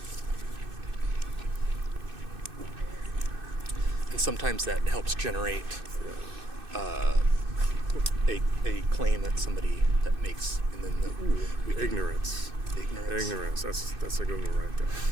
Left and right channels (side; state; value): left; late; 2.6 ms